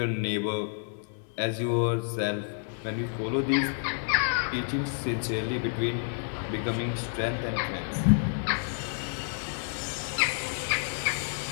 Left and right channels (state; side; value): silent; right; digital silence